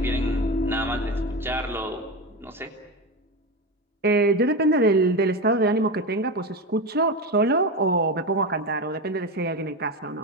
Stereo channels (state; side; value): normal; both; correlation 0.19